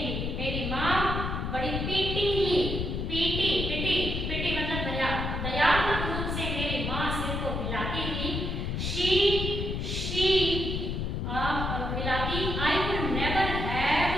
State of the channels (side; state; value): left; noise; rumble, 2 dB below the sound